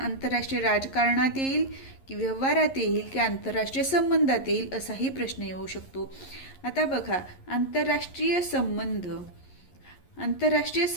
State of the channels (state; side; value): late; right; 11 ms